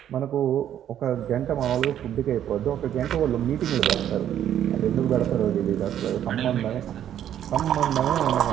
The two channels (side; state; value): left; quieter; 10.5 dB